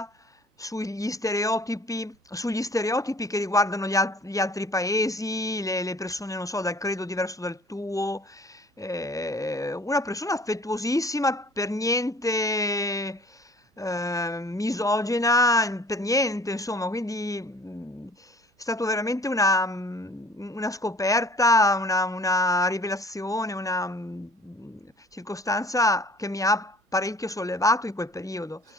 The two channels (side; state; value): both; normal; correlation 0.50